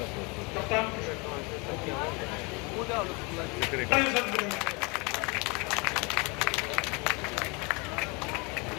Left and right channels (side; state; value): right; quieter; 29.3 dB